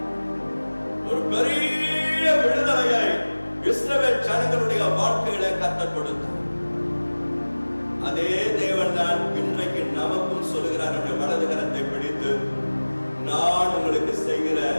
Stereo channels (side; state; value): both; inverted; correlation -1.00